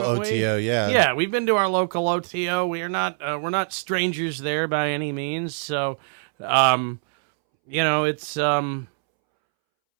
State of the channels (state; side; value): silent; left; 63 dB below the other